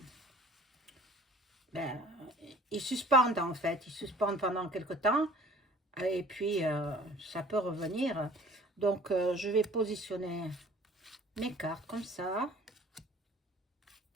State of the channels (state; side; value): normal; both; correlation 0.50